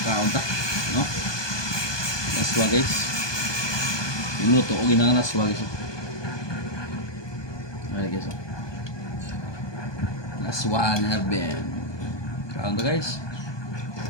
kaunta no laswa guys, minuto o ginang laswa guys. Ay guys, laswa na ben kaunta guys,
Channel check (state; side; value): late; right; 1.2 ms